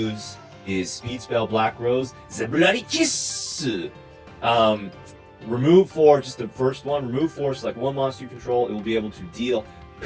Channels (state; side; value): identical; both; correlation 1.00